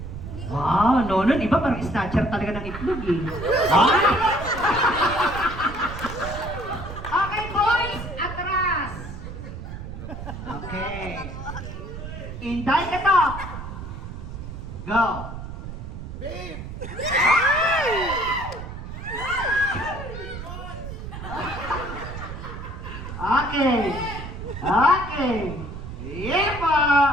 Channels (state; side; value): noise; right; rumble, 9 dB below the sound